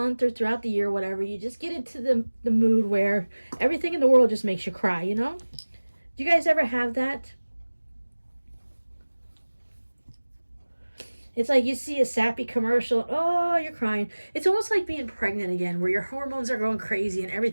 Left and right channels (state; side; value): inverted; both; correlation -1.00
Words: or throughout the year, whatever, you just get into the mood where everything in the world just makes you cry, Do you guys ever have that? It's like you see a sappy commercial, oh, you're crying. It's almost like being pregnant again, where your hormones are going crazy and